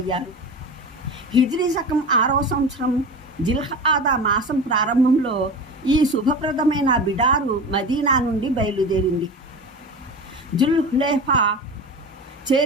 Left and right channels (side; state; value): both; normal; correlation 0.30